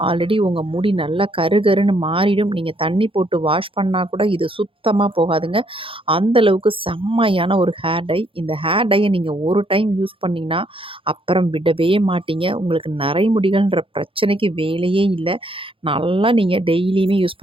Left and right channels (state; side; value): late; left; 0.26 ms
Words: ஆல்ரெடி உங்க முடி நல்லா கருகருன்னு மாறிடும். நீங்க தண்ணி போட்டு வாஷ் பண்ணா கூட இது சுத்தமா போகாதுங்க. அந்த அளவுக்கு செம்மையான ஒரு ஹேர் டை. இந்த ஹேர் டைய நீங்க ஒரு டைம் யூஸ் பண்ணீங்கன்னா, அப்புறம் விடவே மாட்டீங்க. உங்களுக்கு நரைமுடிகள்ன்ற பிரச்சனைக்கு வேலையே இல்ல. நல்லா நீங்க டெய்லியுமே யூஸ்